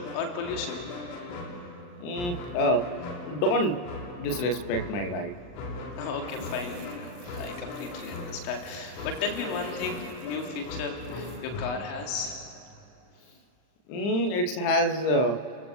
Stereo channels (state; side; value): late; right; 40 ms